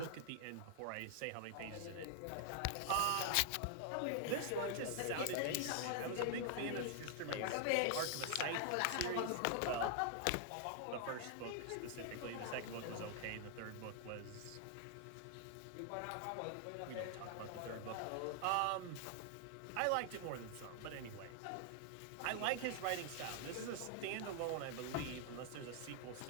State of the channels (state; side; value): different; both; correlation 0.00